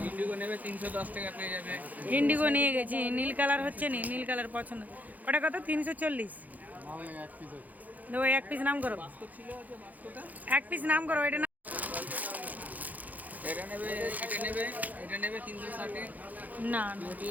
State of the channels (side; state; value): left; late; 0.080 ms